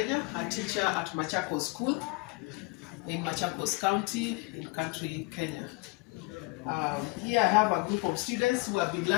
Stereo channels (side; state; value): right; quieter; 27.1 dB